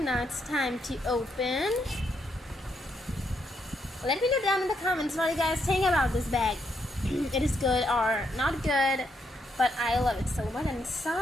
it's time to open. Let me know down in the comments what you guys think about this bag. It is good or not good, but I love it so much.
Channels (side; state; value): both; normal; correlation 0.77